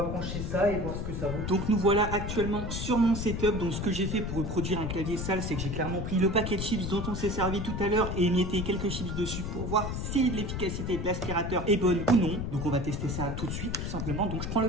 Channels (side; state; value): left; noise; rumble, 4 dB below the sound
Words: brancher ça et voir ce que ça vaut. Donc, nous voilà actuellement sur mon setup. Donc, ce que j'ai fait pour reproduire un clavier sale, c'est que j'ai clairement pris le paquet de chips dont on s'est servi tout à l'heure et émietté quelques chips dessus pour voir si l'efficacité de l'aspirateur est bonne ou non. Donc, on va tester ça tout de suite, tout simplement. Donc, je prends le